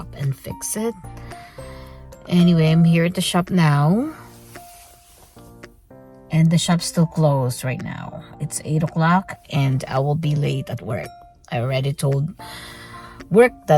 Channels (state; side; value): identical; both; correlation 1.00